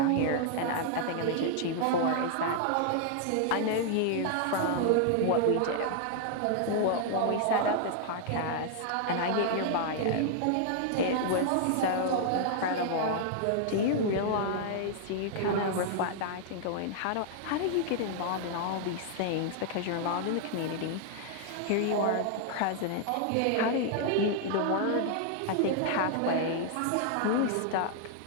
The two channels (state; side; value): different; both; correlation 0.00